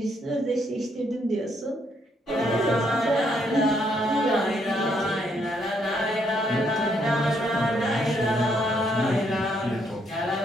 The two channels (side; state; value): both; normal; correlation 0.72